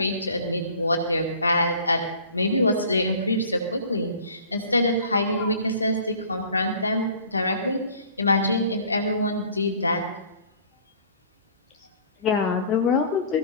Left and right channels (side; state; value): both; inverted; correlation -0.47